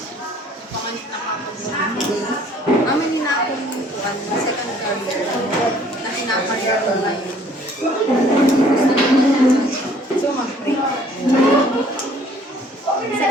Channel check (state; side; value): normal; both; correlation 0.58